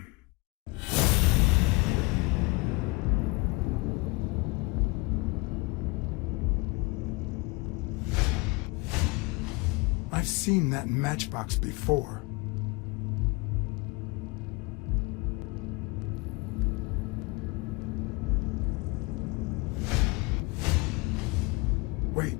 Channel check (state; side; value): quieter; right; 25.5 dB